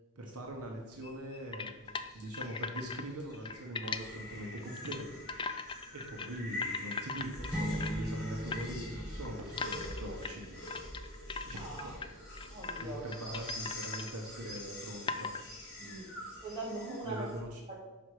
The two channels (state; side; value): normal; both; correlation 0.22